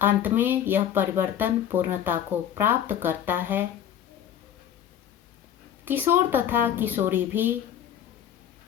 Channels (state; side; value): quieter; right; 10.1 dB